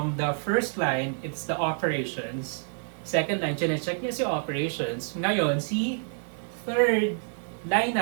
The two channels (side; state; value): left; silent; digital silence